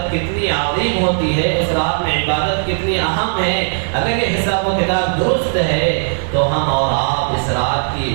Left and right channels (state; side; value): silent; left; digital silence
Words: کتنی عظیم ہوتی ہے، اس رات میں عبادت کتنی اہم ہے۔ اگر یہ حساب و کتاب درست ہے تو ہم اور آپ اس رات